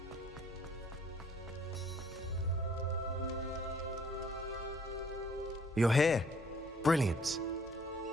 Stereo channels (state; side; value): normal; both; correlation 0.60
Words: You're here. Brilliant.